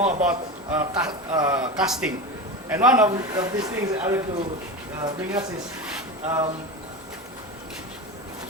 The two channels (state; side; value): normal; both; correlation 0.24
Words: about casting. And one of these things I want to bring us is